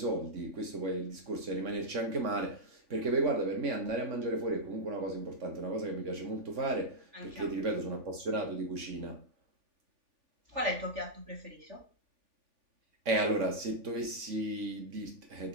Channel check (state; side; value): late; left; 3.6 ms